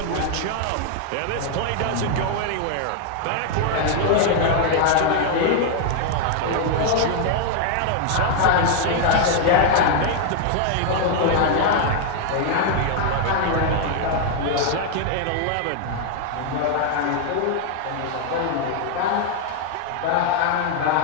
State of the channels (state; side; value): different; both; correlation 0.00